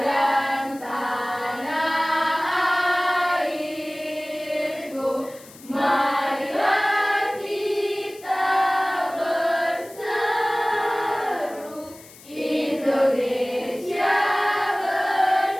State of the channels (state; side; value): noise; left; hiss, 21 dB below the sound